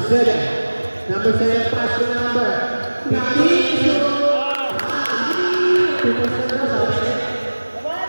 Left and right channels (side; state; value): both; inverted; correlation -1.00